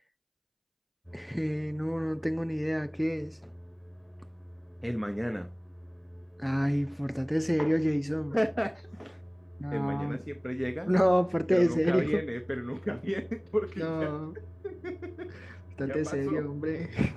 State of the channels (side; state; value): both; identical; correlation 1.00